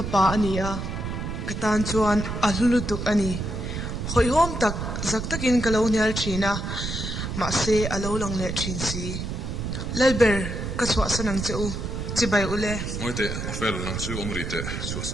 ania. Katan chuan alulutuk ani. Hoi hom tak zaktakin kalonial china. Mase alo lang le chinsi. Lalber kaswa sanang cheu Sipai ule moite ofel lang chu omrite chu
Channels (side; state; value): right; noise; rumble, 4 dB below the sound